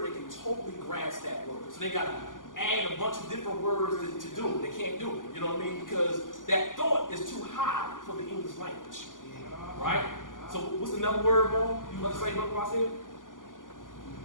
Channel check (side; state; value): right; late; 0.88 ms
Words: that can totally grasp that word. So they got to add a bunch of different words to do it. They can't do it. You know what I mean? Because that thought is too high for the English language. Right? So what's another word, Mo? You want to say what I said?